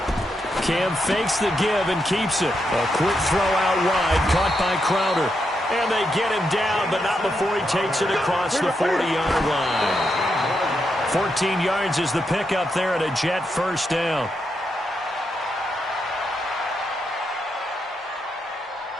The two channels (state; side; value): normal; both; correlation 0.83